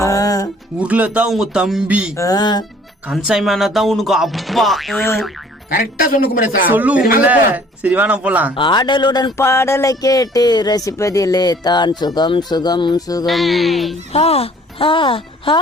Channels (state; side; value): normal; both; correlation 0.55